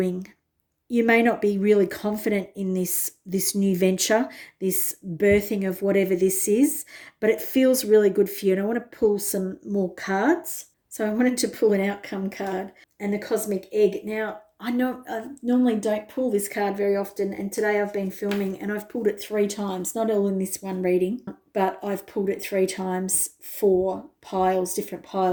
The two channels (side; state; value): both; identical; correlation 1.00